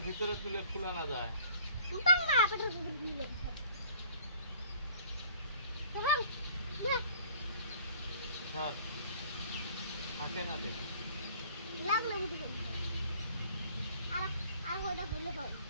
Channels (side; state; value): both; inverted; correlation -0.52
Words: ভিতরে তুলে খোলা না যায় থাকে না দে